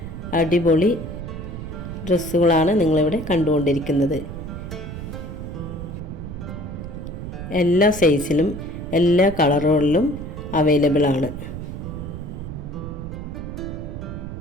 അടിപൊളി ഡ്രസ്സുകളാണ് നിങ്ങളിവിടെ കണ്ടുകൊണ്ടിരിക്കുന്നത്. എല്ലാ സൈസിലും എല്ലാ കളറുകളിലും അവൈലബിൾ ആണ്.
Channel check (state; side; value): noise; right; rumble, 8 dB below the sound